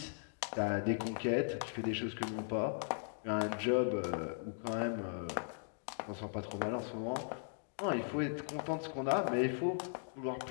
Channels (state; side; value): silent; right; digital silence